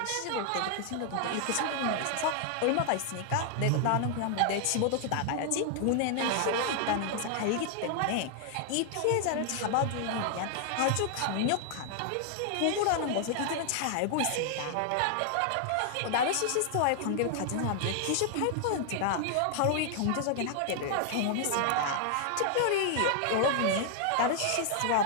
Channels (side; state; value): both; different; correlation 0.00